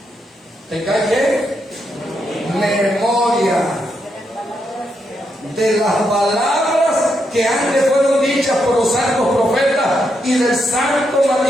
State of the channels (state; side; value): normal; both; correlation 0.81